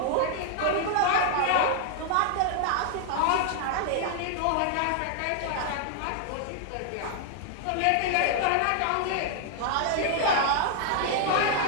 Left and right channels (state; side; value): different; both; correlation 0.00